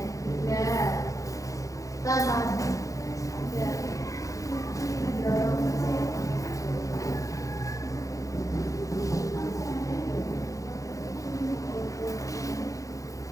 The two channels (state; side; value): late; right; 0.16 ms